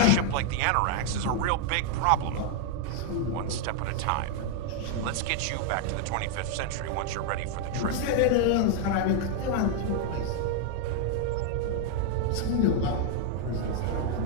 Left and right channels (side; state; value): both; different; correlation 0.00